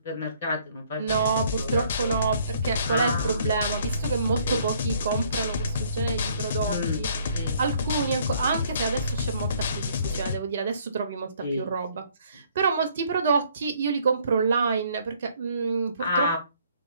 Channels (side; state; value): both; inverted; correlation -0.63